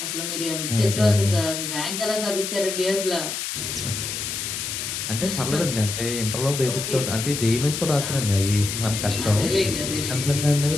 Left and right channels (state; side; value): noise; left; hiss, 4 dB below the sound